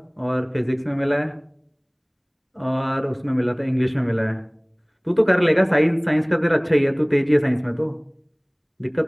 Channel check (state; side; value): identical; both; correlation 1.00